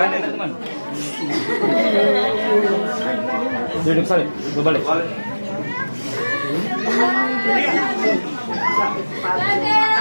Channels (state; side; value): inverted; both; correlation -1.00